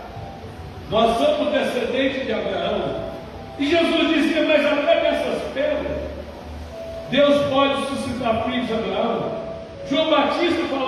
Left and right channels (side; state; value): both; identical; correlation 1.00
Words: Nós somos descendentes de Abraão. E Jesus dizia: mas até dessas pedras Deus pode suscitar filhos de Abraão. João Batista